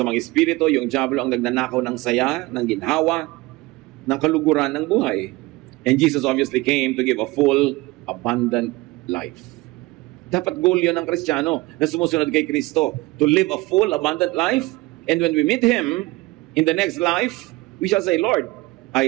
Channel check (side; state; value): left; quieter; 21.4 dB